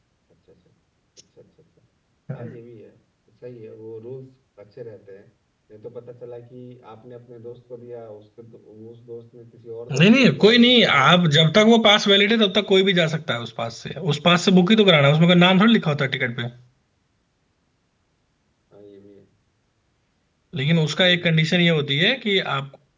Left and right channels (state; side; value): identical; both; correlation 1.00